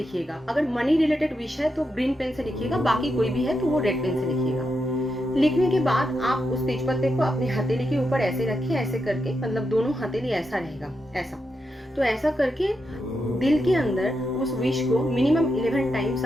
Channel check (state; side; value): normal; both; correlation 0.85